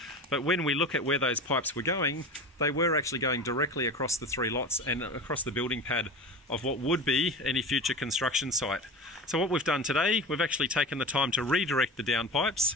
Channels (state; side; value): normal; both; correlation 0.30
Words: But when we look at where those pipes were going, they were actually going directly across the 3 lots and across the building pad of what would be any future construction site. So what we've done today, we've actually taken the time to redirect the downpipes.